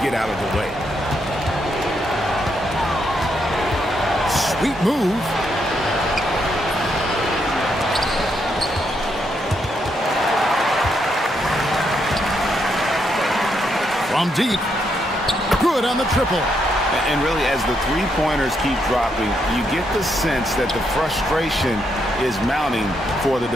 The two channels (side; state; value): both; normal; correlation 0.78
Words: get out of the way. Sweet move. From deep. Good on the triple. And really, as the three-pointers keep dropping, you get the sense that the frustration is mounting for the